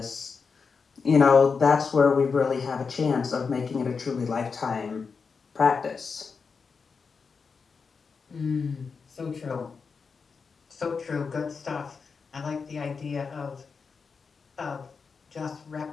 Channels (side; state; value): right; quieter; 5.3 dB